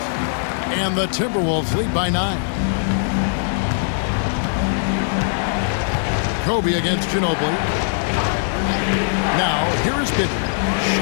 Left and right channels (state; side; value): silent; right; digital silence